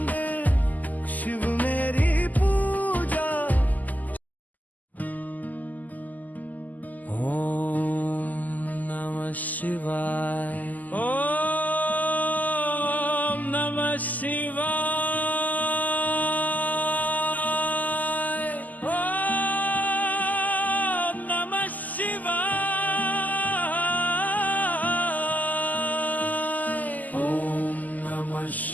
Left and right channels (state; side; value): late; right; 0.081 ms